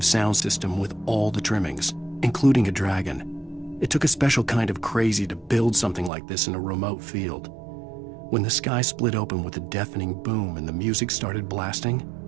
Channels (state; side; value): drops out; left; at 6.1 s